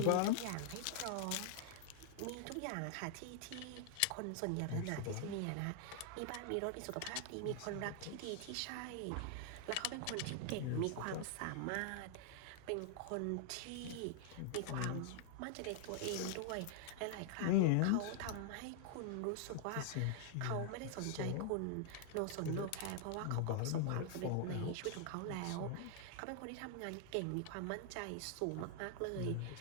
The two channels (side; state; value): both; different; correlation 0.00